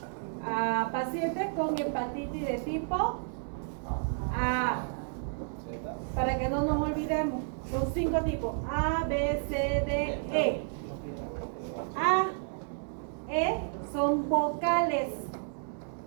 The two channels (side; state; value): left; silent; digital silence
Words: a pacientes con hepatitis de tipo A. Para que no nos olvidemos, son 5 tipos: A, B, C, D, E. A, E son vocales.